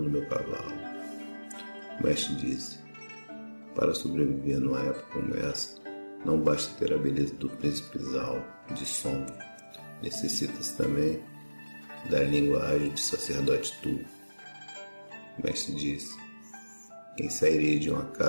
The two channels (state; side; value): inverted; both; correlation -1.00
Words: do meu cavalo. O mestre disse: para sobreviver numa época como essa, não basta ter a beleza do príncipe Zhao de Song. Necessita-se também da língua ágil de sacerdote Tu. O mestre disse: quem sairia de uma